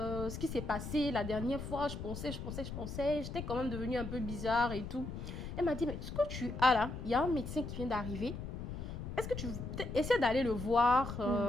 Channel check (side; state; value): left; noise; rumble, 7 dB below the sound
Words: ce qui s'est passé la dernière fois. Je pensais. J'étais quand même devenue un peu bizarre et tout. Elle m'a dit, mais ce que tu as là, il y a un médecin qui vient d'arriver. Est-ce que tu essaies d'aller le voir?